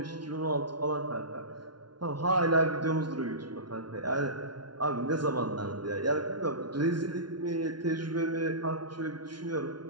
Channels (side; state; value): left; late; 0.71 ms